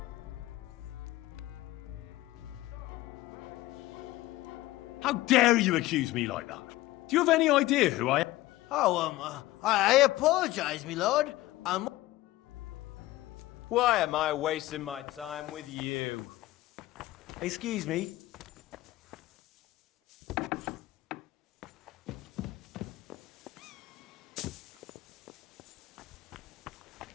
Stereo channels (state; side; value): quieter; right; 17.2 dB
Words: How dare you accuse me like that? Do you have any idea who I am? Oh, I apologize, me lord. Why am I wasting my time with you? Excuse me.